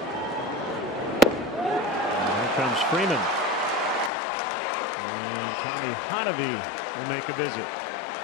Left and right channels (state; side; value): drops out; right; at 4.1 s